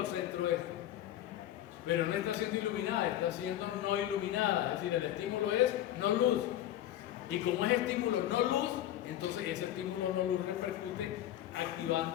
centro este. Pero no está siendo iluminada, está siendo no iluminada. Es decir, el estímulo es no luz. Y como es estímulo no luz, entonces ese estímulo no luz repercute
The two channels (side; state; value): right; quieter; 12.5 dB